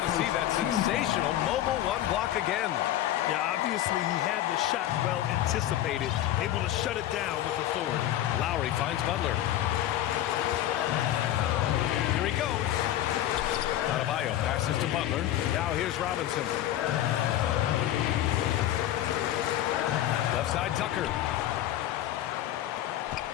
to see that sensational mobile one block again. Yeah, obviously he had the shot well anticipated, able to shut it down with authority. Lowry finds Butler. Here he goes. Adebayo passes to Butler. Now here's Robinson. Left side Tucker.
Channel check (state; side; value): quieter; right; 12.8 dB